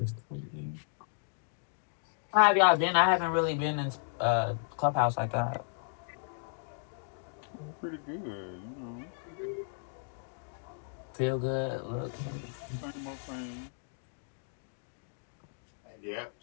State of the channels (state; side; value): silent; right; digital silence